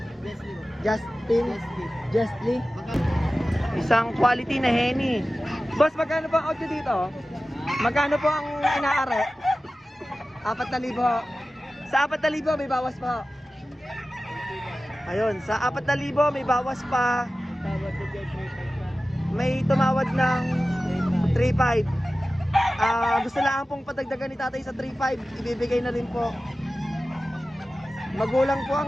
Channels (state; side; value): normal; both; correlation 0.95